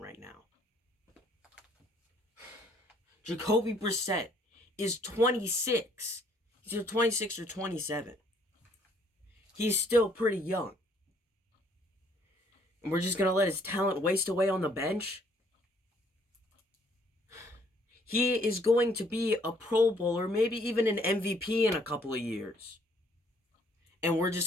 now. Jacoby Brissett is 26. He's either 26 or 27. He's still pretty young. And we're just going to let his talent waste away on the bench? He is going to be a Pro Bowler, maybe even an MVP in a couple of years. And we're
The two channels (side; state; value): both; normal; correlation 0.64